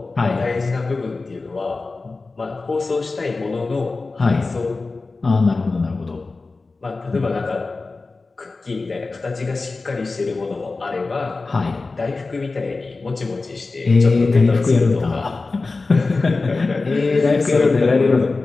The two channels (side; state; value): right; quieter; 3.7 dB